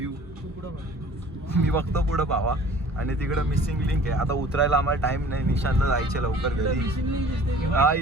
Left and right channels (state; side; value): normal; both; correlation 0.48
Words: मी बघतो पुढं भावा. आणि तिकडं मिसिंग लिंक आहे. आता उतरायला आम्हाला टाइम नाही. निशांतला जायचे लवकर घरी. हा